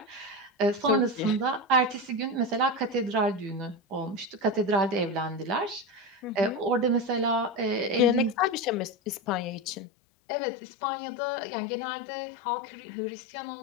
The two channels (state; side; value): drops out; right; at 9.8 s